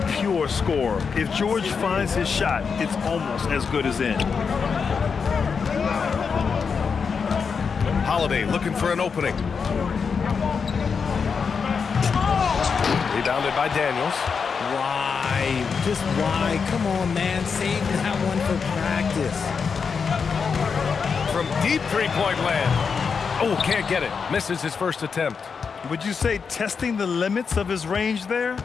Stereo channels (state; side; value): quieter; right; 5.8 dB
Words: pure scorer. If George finds his shot, it's almost as good as in. Holiday looking for an opening. Rebounded by Daniels. Why? Just why? Come on, man. Save that one for practice. From deep 3-point land. Oh, can't get it. Misses his first attempt. Would you say testing the limits of his range there?